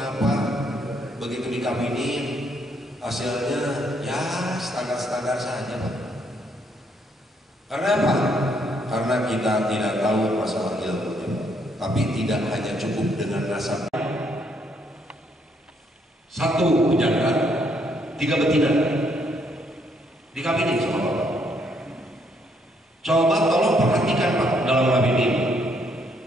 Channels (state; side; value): normal; both; correlation 0.71